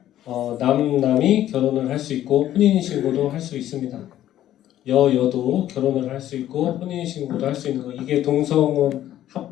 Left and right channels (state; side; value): quieter; right; 12.5 dB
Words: 남남이 결혼을 할 수 있고 혼인신고도 할 수 있습니다. 여도 결혼을 할 수 있고 혼인신고도 할 수 있는 거, 이게 동성혼